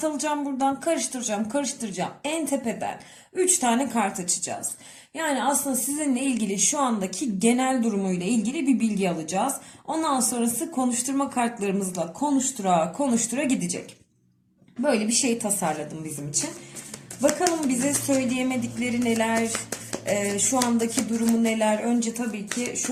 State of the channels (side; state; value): both; identical; correlation 1.00